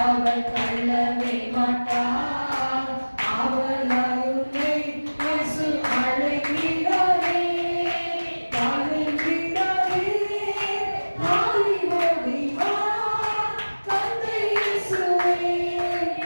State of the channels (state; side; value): inverted; both; correlation -1.00